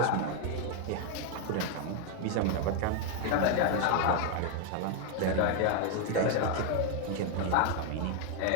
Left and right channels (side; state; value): both; different; correlation 0.01